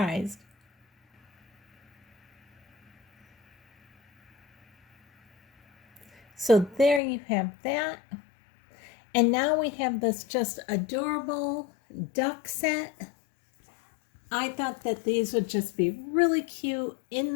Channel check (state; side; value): drops out; right; at 7.0 s